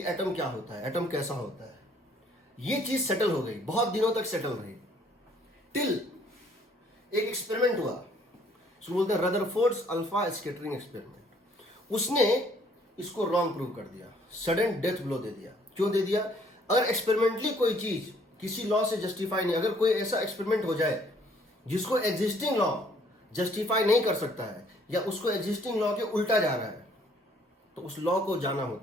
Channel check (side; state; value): both; normal; correlation 0.62